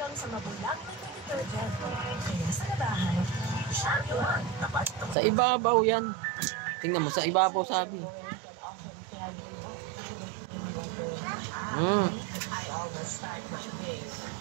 hanggang sa mabulang na detergent. Kaya sa labahan, champion. Sa ibabaw yan. Tingnan mo, sa ibabaw sabi. I always start my day.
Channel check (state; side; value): drops out; left; at 5.2 s